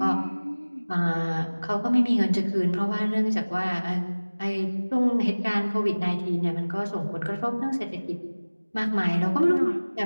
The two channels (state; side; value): inverted; both; correlation -1.00